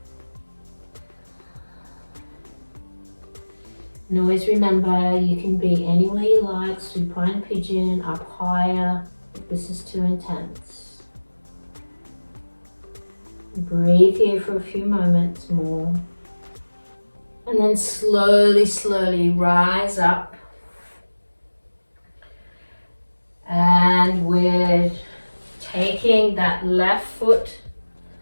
And always remember, you can be anywhere you like, supine pigeon, up higher, if this is too intense. Breathe here for a few moments more. And then slowly rise up. And we're taking that left foot,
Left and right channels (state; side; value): inverted; both; correlation -1.00